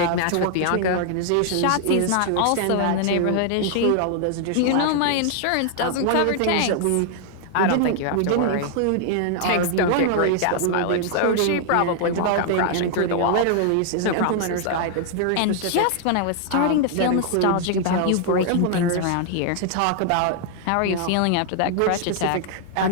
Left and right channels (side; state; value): both; different; correlation 0.00